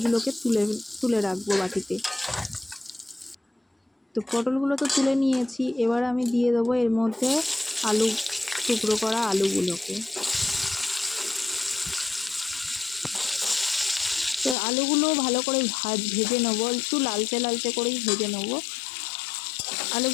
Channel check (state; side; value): drops out; right; at 14.6 s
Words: তুলে তুলে রাখবো বাটিতে। তো পটলগুলো তো তুলে নিয়েছি, এবার আমি দিয়ে দেবো এর মধ্যে আলু, টুকরো করা আলুগুলোকে। তো আলুগুলো ভালো করে ভেজে নেবো, একটু লালচে লালচে করেই ভেজে নেবো।